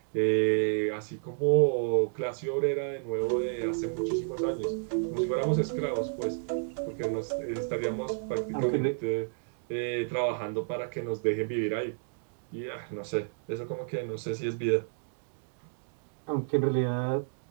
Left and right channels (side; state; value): left; silent; digital silence